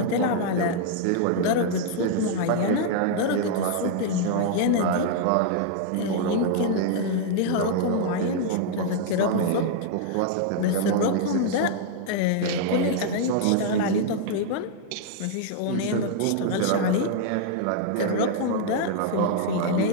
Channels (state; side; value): different; both; correlation -0.01